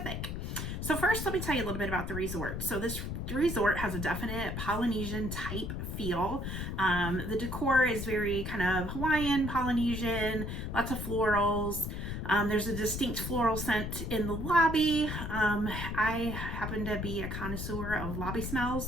So first, let me tell you a little bit about the resort. So this resort has a definite Polynesian type feel. The decor is very kind of Hawaiian, Polynesian, lots of florals. There's a distinct floral scent in the lobby. I happen to be a connoisseur of lobby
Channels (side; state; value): left; noise; rumble, 4 dB below the sound